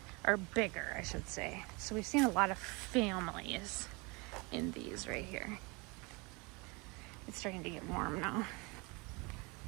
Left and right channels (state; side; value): quieter; left; 27.9 dB